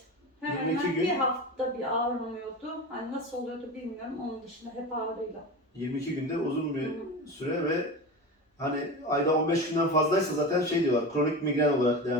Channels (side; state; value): both; normal; correlation 0.27